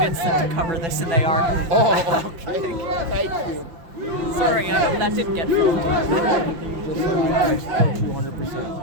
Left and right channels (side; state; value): left; late; 5.9 ms